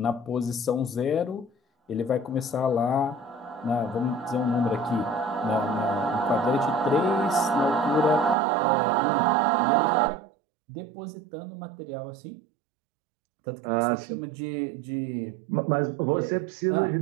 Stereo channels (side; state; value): left; drops out; at 8.3 s